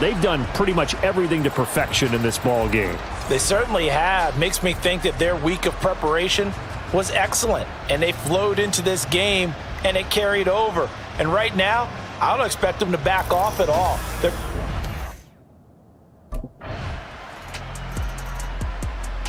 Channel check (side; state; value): both; identical; correlation 1.00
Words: they've done pretty much everything to perfection in this ball game. They certainly have. Makes me think that their week of preparation was excellent. And they flowed into this game, and it carried over. And right now, I don't expect them to back off at all.